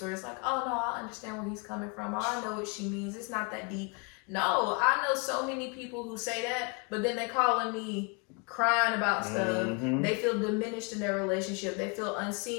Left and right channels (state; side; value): quieter; right; 32.9 dB